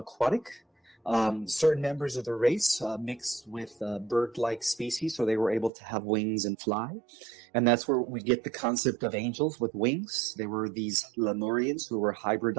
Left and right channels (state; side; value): drops out; left; at 5.7 s